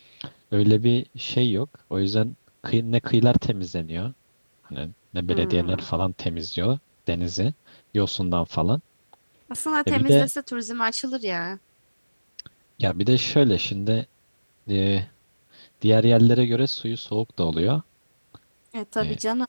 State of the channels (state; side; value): inverted; both; correlation -1.00